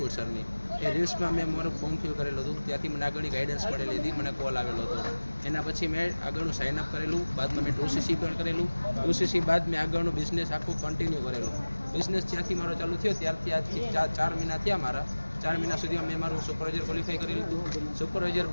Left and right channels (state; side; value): inverted; both; correlation -1.00